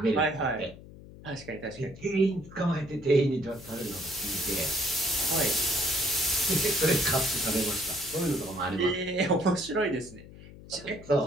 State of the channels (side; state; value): left; noise; hum, 18 dB below the sound